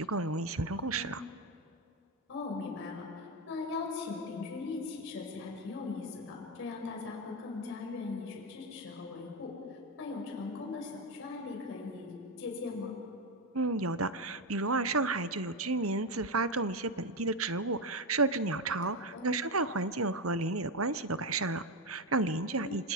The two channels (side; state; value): both; normal; correlation 0.10